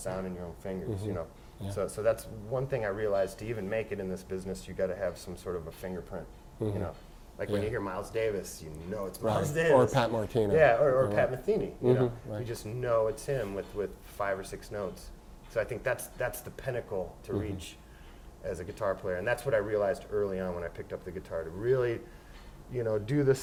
and your own fingers, Yeah. So that's one thing I realized. To even make it in this business, you got to have some sort of a fingerprint, Like when you hear Miles Davis, it's Miles Davis. Or Pat Martino. Yeah, or Pat Metheny, Right. You just know it's him with 5 or 6 notes. So I think that's the pinnacle to reach as a guitar player. And that's what I realized early on when I picked up the guitar. To really, do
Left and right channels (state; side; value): identical; both; correlation 1.00